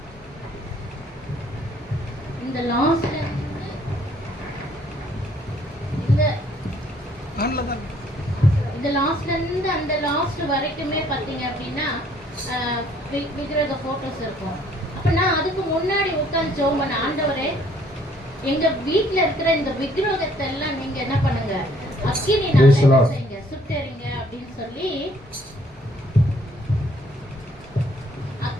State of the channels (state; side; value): normal; both; correlation 0.62